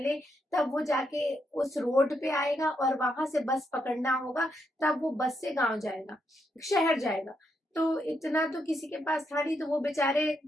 तब वो जाके उस रोड पे आएगा, और वहां से बस पकड़ना होगा, तब वो बस से गांव जाएगा, शहर जाएगा। तो इतना तो किसी के पास था नहीं, तो वो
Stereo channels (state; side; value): normal; both; correlation 0.79